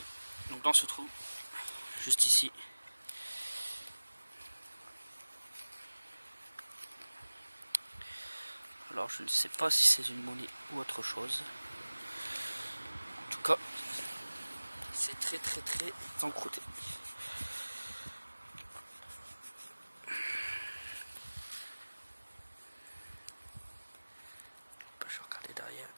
Donc dans ce trou, juste ici. Alors je ne sais pas si c'est une monnaie ou autre chose. En tout cas, c'est très encrouté. Je vais regarder derrière.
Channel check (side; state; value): both; inverted; correlation -1.00